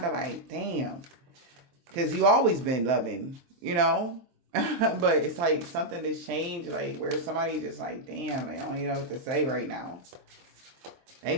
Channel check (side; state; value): left; late; 23 ms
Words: of like, damn. Because you always been loving, you know? But it's like something that's changed, like where somebody just like, damn, they don't even know what to say right now. They